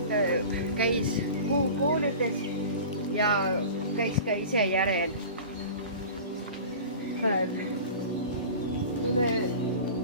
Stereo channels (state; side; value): inverted; both; correlation -0.37